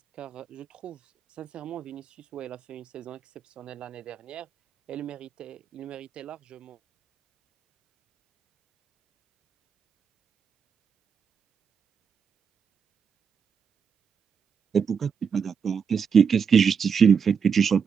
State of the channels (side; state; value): left; quieter; 6.6 dB